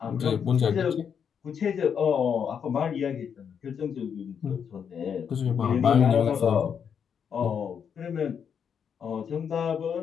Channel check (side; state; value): right; quieter; 7.4 dB